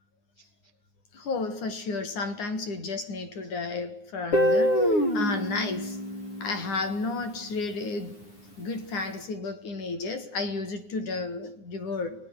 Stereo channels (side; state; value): right; late; 9.7 ms